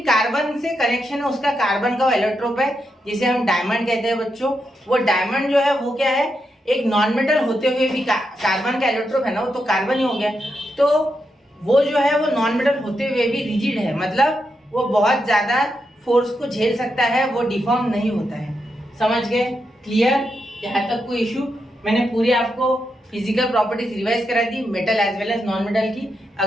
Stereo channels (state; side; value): normal; both; correlation 0.84